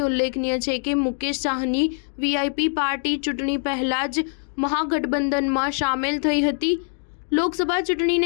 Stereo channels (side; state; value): right; silent; 63 dB below the other